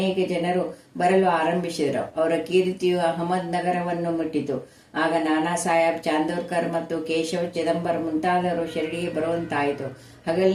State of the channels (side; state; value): both; identical; correlation 1.00